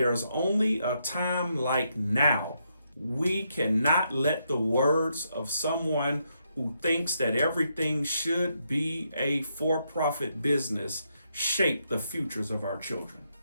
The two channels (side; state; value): both; inverted; correlation -0.79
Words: only a time like now, we cannot let the words of someone who thinks that everything should be a for-profit business shape the futures of our children.